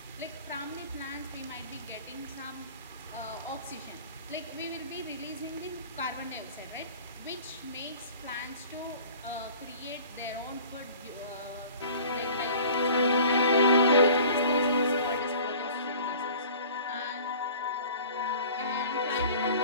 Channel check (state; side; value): inverted; both; correlation -0.46